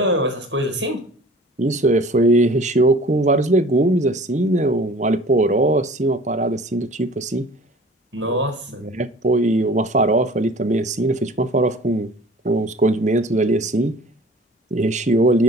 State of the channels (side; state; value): both; normal; correlation 0.46